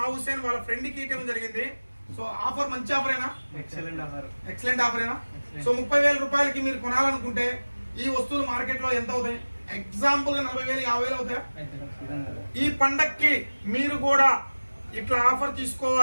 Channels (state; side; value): inverted; both; correlation -1.00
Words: హుసేన్ వాళ్ళ ఫ్రెండ్కి ఇవ్వడం జరిగింది. సో ఆఫర్ మంచి ఆఫరేనా? ఎక్సలెంట్ ఆఫరేనా? సో 30,000 రూపాయలకి మీరు కొనాలనుకుంటే ఈ వస్తువులు మార్కెట్ లో ఎంత అవుతాయి? ఎగ్జాంపుల్ గా 40,000, 50,000 అవుతాయా? ఈ పండక్కి మీరు కూడా ఇట్లా ఆఫర్